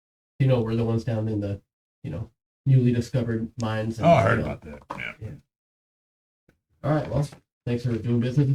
We're the ones down in the, newly discovered mines. Oh, I heard about that. Yeah. All right, well, thanks for doing business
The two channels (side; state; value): both; identical; correlation 1.00